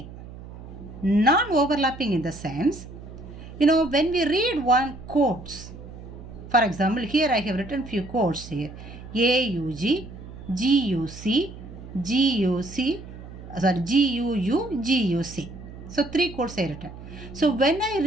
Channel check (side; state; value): right; noise; hum, 14 dB below the sound